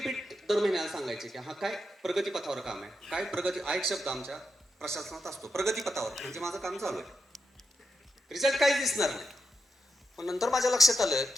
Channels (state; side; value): normal; both; correlation 0.86